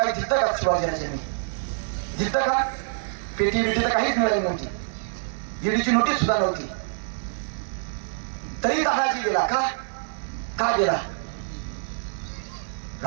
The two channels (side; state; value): left; silent; digital silence